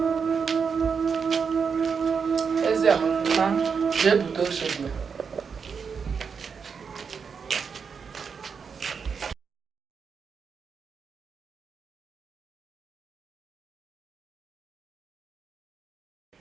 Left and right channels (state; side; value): quieter; left; 6.0 dB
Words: Eze ma. Je buto shegbe.